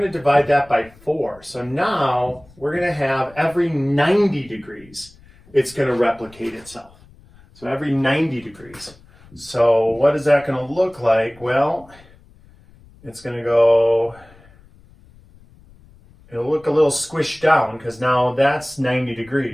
to divide that by 4. So now we're going to have every 90 degrees, it's going to replicate itself. So every 90 degrees. So what is that going to look like? Well, it's going to go, it'll look a little squished down because now that's 90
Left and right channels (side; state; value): left; noise; rumble, 26 dB below the sound